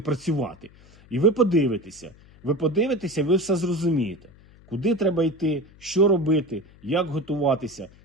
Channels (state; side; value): noise; left; hum, 25 dB below the sound